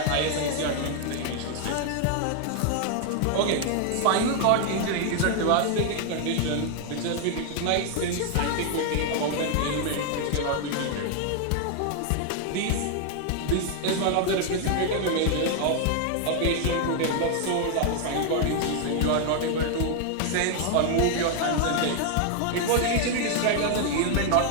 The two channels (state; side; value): different; both; correlation 0.00